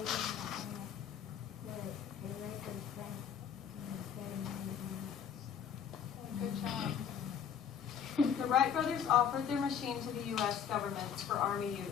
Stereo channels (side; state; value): right; quieter; 7.9 dB